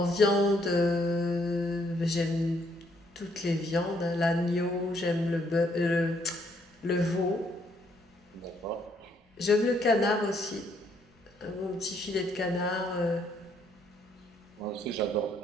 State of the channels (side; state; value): both; normal; correlation 0.70